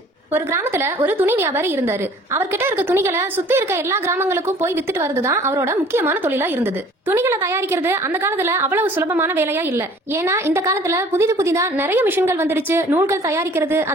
ஒரு கிராமத்துல ஒரு துணி வியாபாரி இருந்தாரு. அவர்கிட்ட இருக்க துணிகளை சுத்தி இருக்க எல்லா கிராமங்களுக்கும் போய் வித்துட்டு வரதுதான் அவரோட முக்கியமான தொழிலா இருந்தது. துணிகளை தயாரிக்கிறது அந்த காலத்துல அவ்வளவு சுலபமான வேலையா இல்ல. ஏன்னா இந்த காலத்துல புதிதா நிறைய மிஷின்கள் வந்துருச்சு. நூல்கள் தயாரிக்கிறது,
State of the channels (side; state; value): both; normal; correlation 0.52